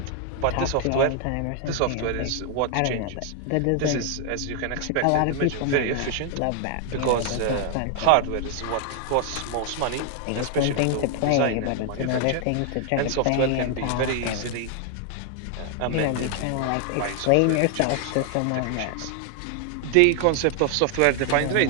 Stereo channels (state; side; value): different; both; correlation 0.00